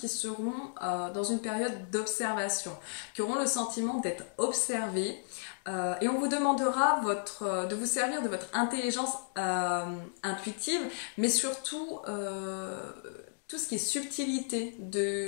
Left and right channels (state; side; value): silent; right; digital silence